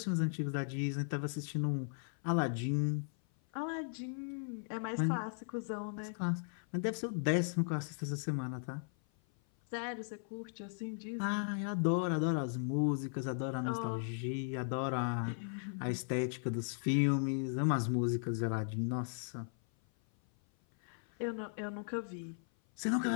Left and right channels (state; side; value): silent; right; 53 dB below the other